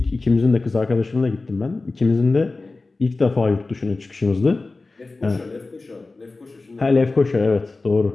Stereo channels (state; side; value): quieter; right; 3.5 dB